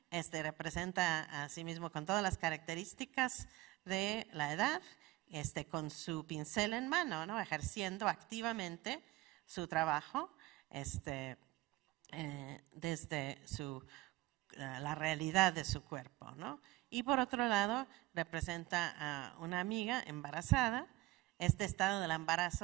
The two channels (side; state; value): left; quieter; 18.8 dB